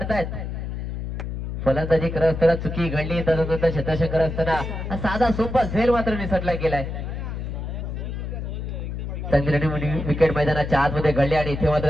फलंदाजी करत असताना चुकी घडली. तदनंतर क्षेत्ररक्षण करत असताना साधा सोपा झेल मात्र निसटला गेलाय. चांगली विकेट मैदानाच्या आतमध्ये घडली आणि इथे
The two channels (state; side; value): noise; left; hum, 5 dB below the sound